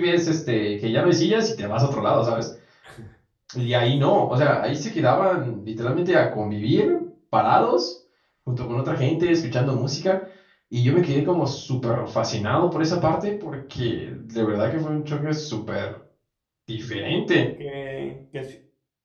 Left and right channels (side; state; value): both; identical; correlation 1.00